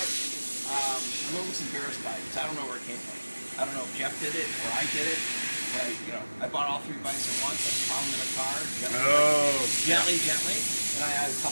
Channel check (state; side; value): inverted; both; correlation -1.00